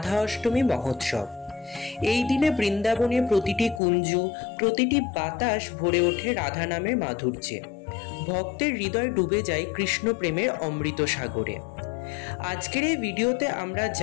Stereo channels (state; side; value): drops out; right; at 3.8 s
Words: অষ্টমী মহোৎসব। এই দিনে বৃন্দাবনের প্রতিটি কুঞ্জ, প্রতিটি বাতাস ভরে ওঠে রাধা নামের মাধুর্যে। ভক্তের হৃদয় ডুবে যায় কৃষ্ণ প্রেমের অমৃত সাগরে। আজকের এই ভিডিওতে আমরা